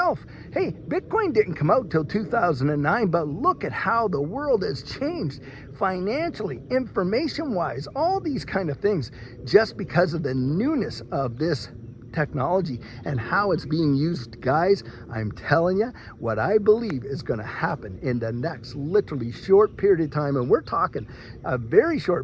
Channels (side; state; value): both; identical; correlation 1.00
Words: Hey, Bitcoin didn't come out till 2009, but look at how the world has changed financially, information-wise, all these kind of things, just because of the newness of this technology and how it's being used, guys, I'm telling you what I believe is going to happen in the next literally short period of time. And we're talking a very